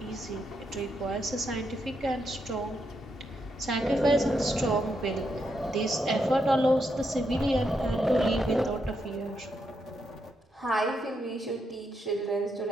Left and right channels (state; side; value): normal; both; correlation 0.81